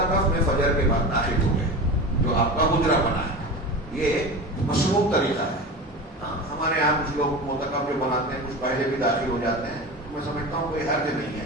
میں فجر کے بعد داخل ہو گئے جو آپ کا حجرہ بنا ہے. یہ مشروع طریقہ ہے. ہاں ہمارے یہاں کچھ لوگ معتکف جو بناتے ہیں کچھ پہلے بھی داخل ہو جاتے ہیں. میں سمجھتا ہوں کوئی حرج نہیں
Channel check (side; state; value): both; normal; correlation 0.29